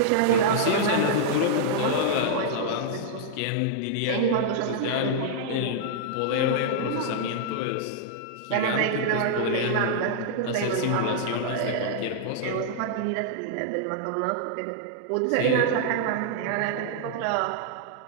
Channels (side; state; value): both; different; correlation -0.01